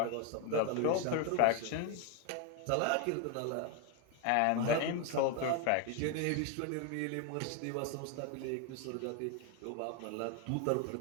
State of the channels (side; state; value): both; different; correlation 0.01